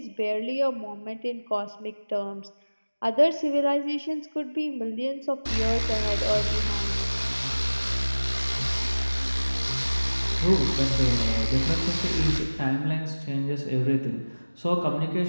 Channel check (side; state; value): both; inverted; correlation -1.00